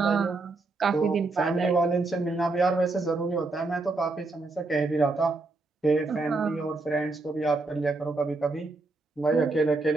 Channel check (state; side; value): quieter; left; 3.4 dB